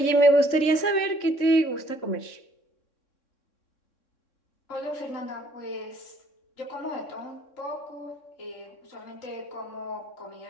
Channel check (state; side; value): late; right; 3.6 ms